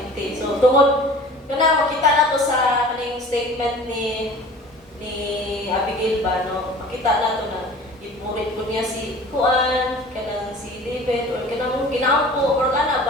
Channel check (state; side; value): normal; both; correlation 0.44